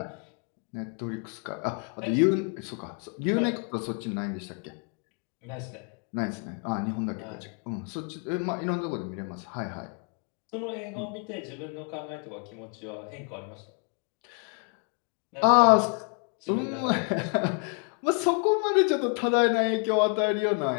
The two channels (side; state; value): right; quieter; 38.8 dB